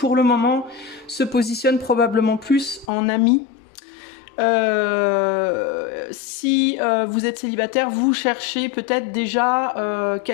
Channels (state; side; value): drops out; right; at 2.9 s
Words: le moment se positionne probablement plus en ami. Si vous êtes célibataire, vous cherchez peut-être déjà